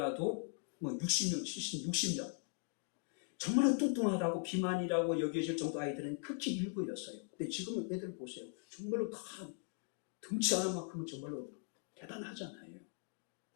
60명, 60명. 정말로 뚱뚱하다고 비만이라고 여겨질 정도 아이들은 극히 일부였어요. 근데 지금은 애들 보세요. 정말로 다 덩치 하나만큼은 정말로 대단하잖아요.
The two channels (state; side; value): silent; right; 51 dB below the other